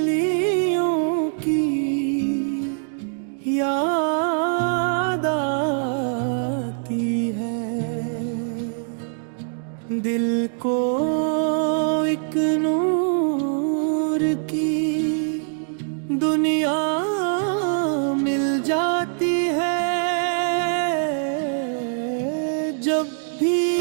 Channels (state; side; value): silent; left; digital silence